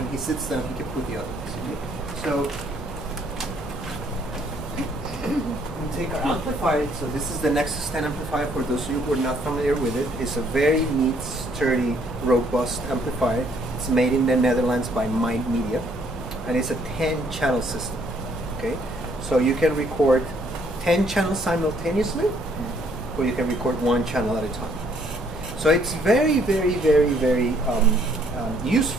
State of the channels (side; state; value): both; normal; correlation 0.66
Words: he sits down, he can put the other ones. Okay? So we take our amplifier. So this is the Nexus 10 amplifier. For those of you who are not familiar with it, it's a very neat, sturdy, robust amplifier. It's made in the Netherlands by Mind Media, and it's a 10-channel system. Okay, so you can record 10 channels simultaneously, or you can record 1 channel at a time. So it's very, very, very, very